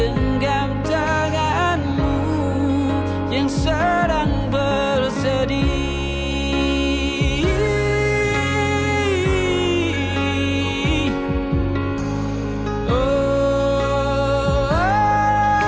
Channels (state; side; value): identical; both; correlation 1.00